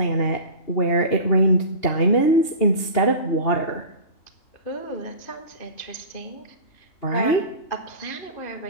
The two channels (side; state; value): right; late; 2.8 ms